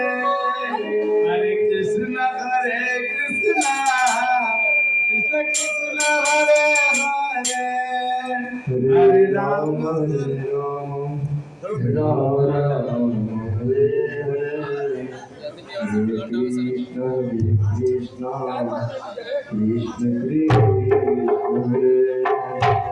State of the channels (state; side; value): identical; both; correlation 1.00